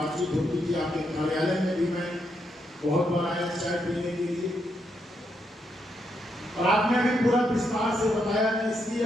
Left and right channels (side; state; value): both; normal; correlation 0.80